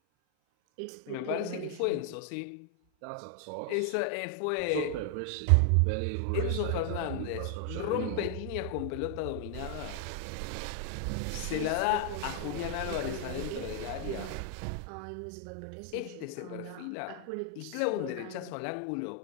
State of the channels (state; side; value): different; both; correlation 0.00